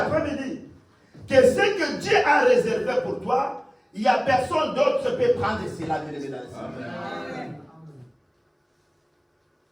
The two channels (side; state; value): both; identical; correlation 1.00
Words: que ce que Dieu a réservé pour toi, il n'y a personne d'autre qui peut prendre cela, bien aimé, dans le Seigneur.